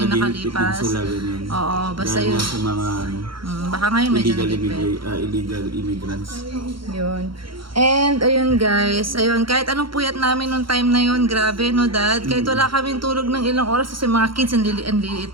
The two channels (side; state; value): left; late; 0.73 ms